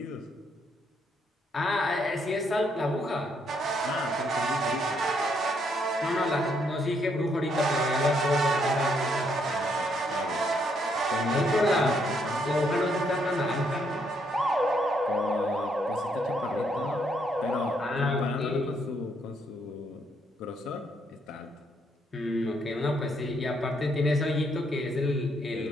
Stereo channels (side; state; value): both; normal; correlation 0.73